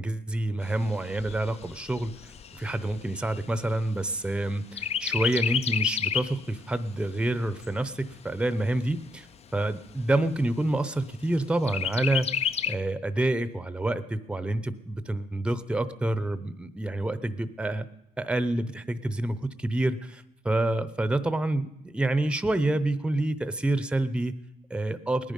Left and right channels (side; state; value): both; normal; correlation 0.83